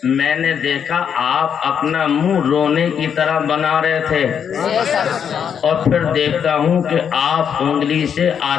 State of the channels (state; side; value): quieter; right; 7.8 dB